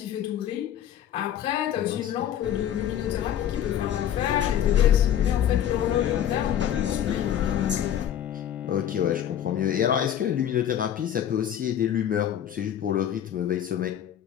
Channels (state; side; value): quieter; right; 10.4 dB